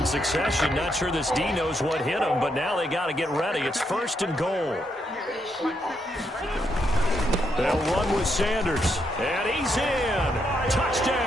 succession. Not sure this D knows what hit him, but now they got to get ready. It's 1st and goal. They'll run with Sanders. And he's in.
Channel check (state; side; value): normal; both; correlation 0.78